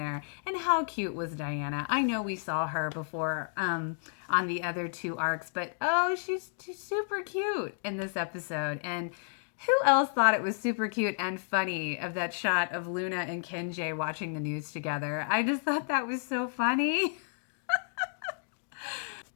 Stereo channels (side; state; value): right; silent; digital silence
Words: And how cute was Diana? I know we saw her before on the other two arcs, but she's super cute in this episode. And who else thought it was super cute and funny of that shot of Luna and Kenji watching the news together? I just thought that was so funny.